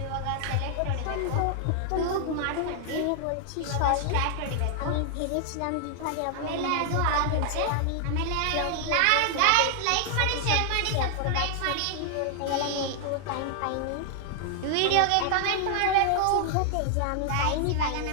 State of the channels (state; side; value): different; both; correlation 0.00